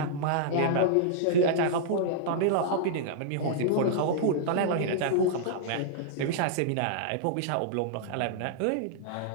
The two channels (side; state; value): both; different; correlation -0.02